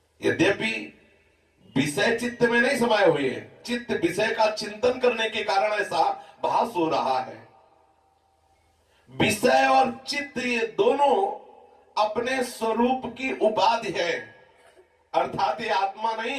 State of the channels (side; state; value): both; identical; correlation 1.00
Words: यद्यपि विषय चित्त में नहीं समाये हुए हैं, चित्त विषय का चिंतन करने के कारण ऐसा भास हो रहा है। विषय और चित्त ये दोनों अपने स्वरूप की उपाधि है, अर्थात ये आत्मा